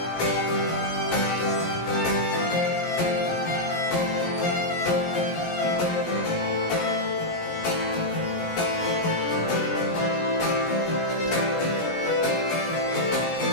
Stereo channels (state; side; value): late; right; 17 ms